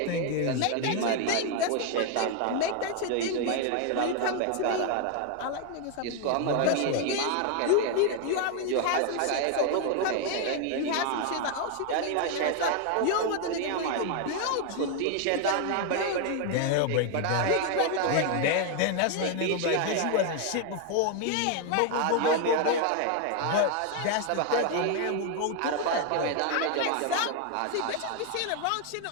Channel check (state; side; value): different; both; correlation 0.01